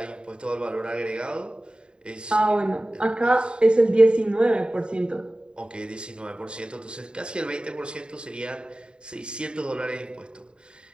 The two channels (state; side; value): late; left; 0.050 ms